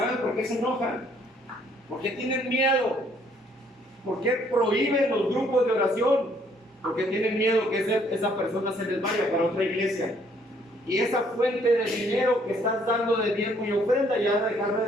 por qué se enojan? Porque tienen miedo. ¿Por qué prohíben los grupos de oración? Porque tienen miedo que esa persona se les vaya para otra iglesia. Y esa fuente de dinero que estás dando de diezmo y ofrenda ya dejará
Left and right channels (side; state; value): both; normal; correlation 0.65